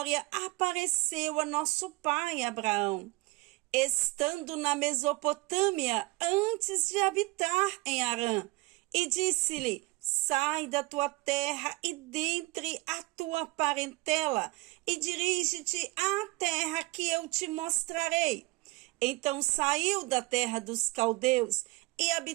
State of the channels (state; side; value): quieter; left; 24.1 dB